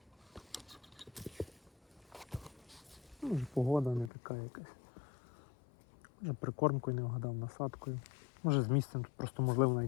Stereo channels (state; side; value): drops out; right; at 4.1 s